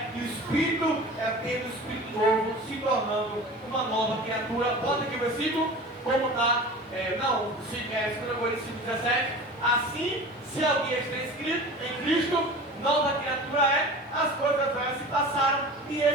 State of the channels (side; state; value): both; normal; correlation 0.36